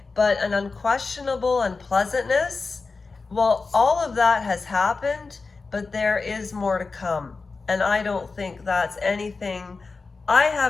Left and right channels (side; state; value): right; quieter; 4.2 dB